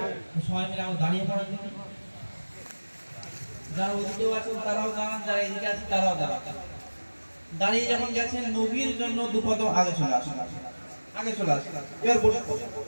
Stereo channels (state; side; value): inverted; both; correlation -1.00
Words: সবাই মিলে আমরা দাঁড়িয়ে পড়েন দেখি। যারা ওদিকেও আছেন তারাও দাঁড়ান, যারা এদিকে আছেন তারাও দাঁড়ান। দাঁড়িয়ে যখন গেছেন নবীর জন্য দুপদ আগে চলে আসুন, আগে চলে আসুন। এবার বসে পড়ুন,